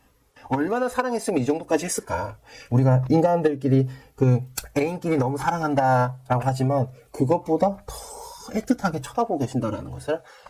얼마나 사랑했으면 이 정도까지 했을까. 우리가 인간들끼리 애인끼리 너무 사랑한다라고 하지만 그것보다 더 애틋하게 쳐다보고 계신다라는 것을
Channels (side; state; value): both; identical; correlation 1.00